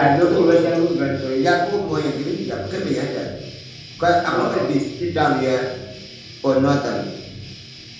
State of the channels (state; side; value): identical; both; correlation 1.00